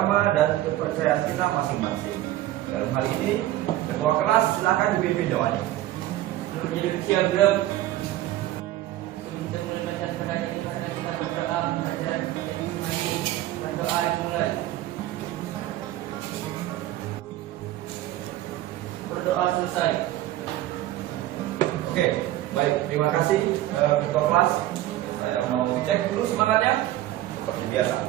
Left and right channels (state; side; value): quieter; left; 14.7 dB